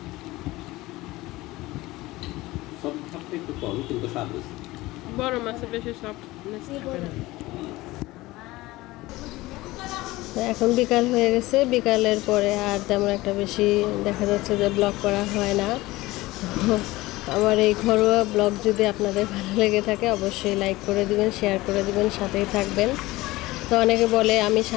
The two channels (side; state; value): right; quieter; 19.2 dB